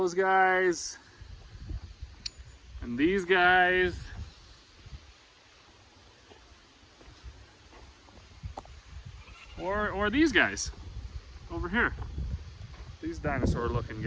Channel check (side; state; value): both; identical; correlation 1.00